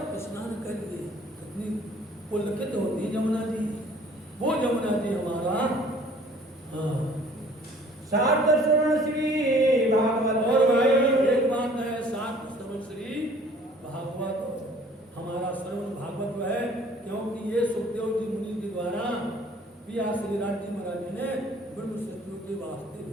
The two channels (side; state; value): both; normal; correlation 0.54